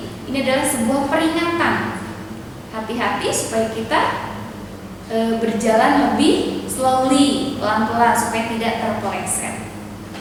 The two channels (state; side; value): identical; both; correlation 1.00